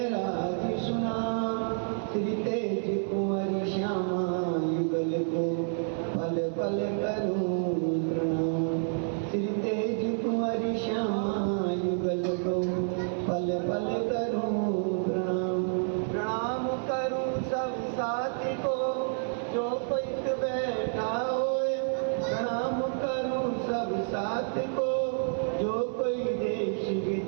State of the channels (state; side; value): silent; left; 58 dB below the other